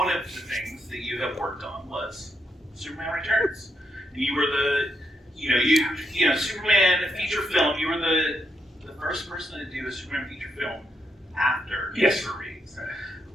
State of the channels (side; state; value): both; normal; correlation 0.79